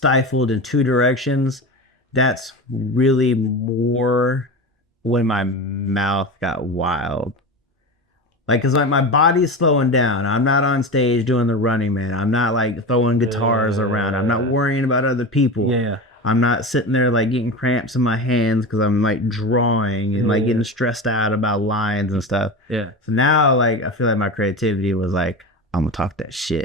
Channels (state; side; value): normal; both; correlation 0.25